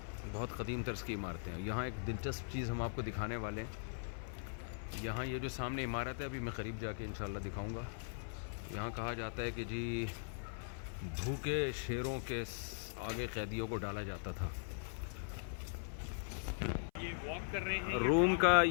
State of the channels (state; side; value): silent; right; 51 dB below the other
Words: बहुत क़दीम तर्ज की इमारतें हैं। यहाँ एक दिलचस्प चीज़ हम आपको दिखाने वाले हैं। यहाँ ये जो सामने इमारत है, अभी मैं करीब जाके इंशाल्लाह दिखाऊंगा। यहाँ कहा जाता है कि जी भूखे शेरों के आगे कैदियों को डाला जाता था। ये वॉक कर रहे हैं। रोम का